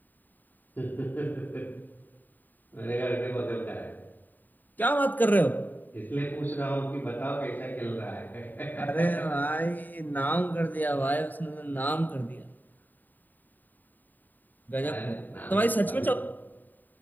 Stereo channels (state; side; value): late; right; 0.088 ms